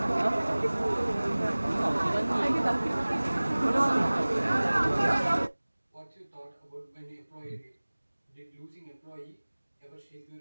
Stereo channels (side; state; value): both; inverted; correlation -1.00